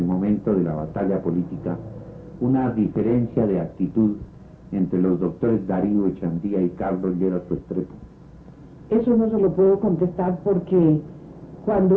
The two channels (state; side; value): identical; both; correlation 1.00